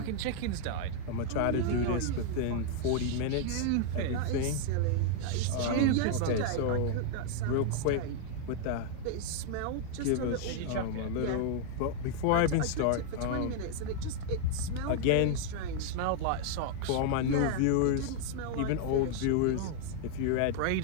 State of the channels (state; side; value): different; both; correlation 0.00